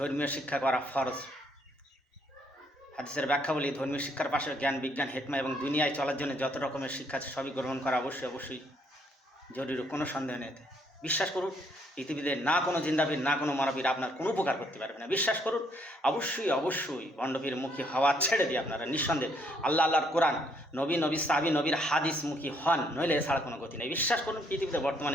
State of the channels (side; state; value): both; normal; correlation 0.69